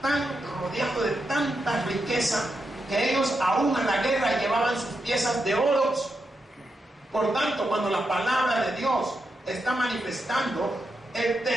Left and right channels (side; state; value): both; normal; correlation 0.85